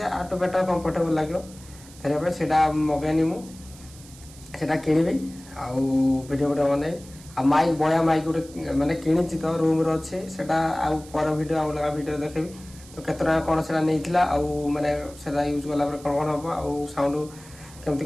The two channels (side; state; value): right; noise; hiss, 21 dB below the sound